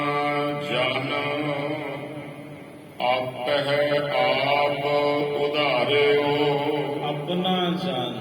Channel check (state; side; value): identical; both; correlation 1.00